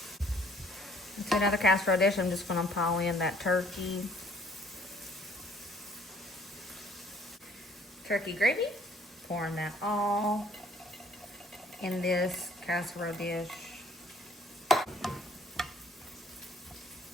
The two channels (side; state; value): both; normal; correlation 0.59